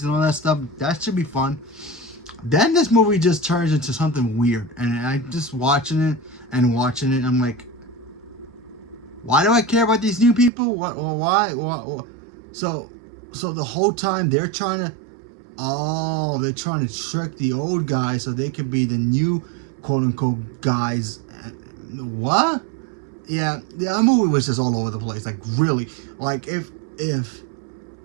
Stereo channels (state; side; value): drops out; left; at 10.5 s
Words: and all that stuff. That should be fun. Then this movie just turns into something weird, and I just watching it. I'm like, why do I care about these new people? Why? So the whole time they're trying to trick the old guys so they could be the new quote unquote guys. What? Yeah, the movie was just all over the place. Like really, like if